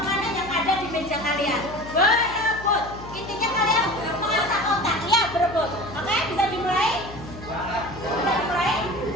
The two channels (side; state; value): left; noise; hum, 14 dB below the sound